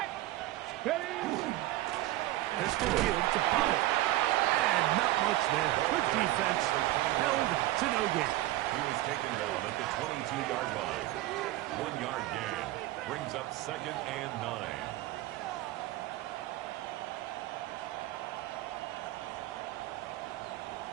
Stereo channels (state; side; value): quieter; left; 16.6 dB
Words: Ready? Pistol give to Pollard. And not much there. Good defense. Held to no gain. He was taken down at the 22-yard line. 1-yard gain. Brings up 2nd and 9.